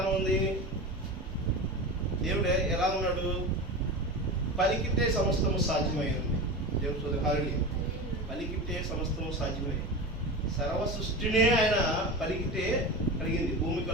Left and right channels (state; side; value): normal; both; correlation 0.27